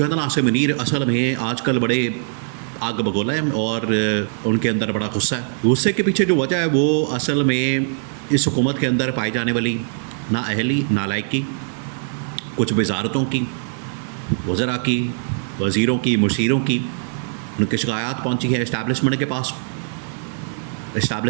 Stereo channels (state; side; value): silent; left; 65 dB below the other